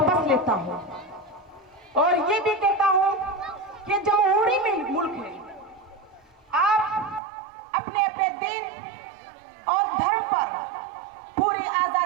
लेता हूँ और ये भी कहता हूँ कि जमहूरी में मुल्क है, आप अपने अपने दीन और धर्म पर पूरी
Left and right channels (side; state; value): left; drops out; at 7.2 s